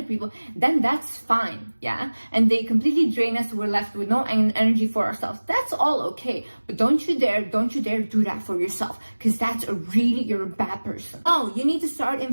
people, then that's fine, yeah? And they completely drain us, we're left with no energy for ourselves. That's all okay. But don't you dare do that for yourself, because you're a bad person. Oh, you need to start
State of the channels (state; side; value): inverted; both; correlation -1.00